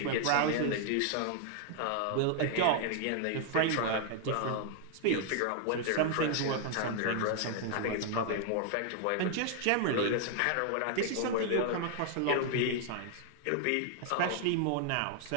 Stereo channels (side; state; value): both; different; correlation 0.00